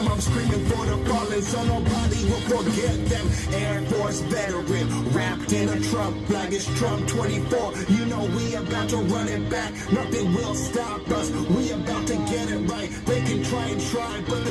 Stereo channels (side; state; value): both; identical; correlation 1.00